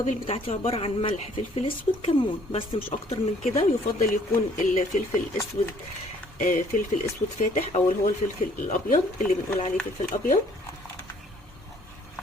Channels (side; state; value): both; normal; correlation 0.60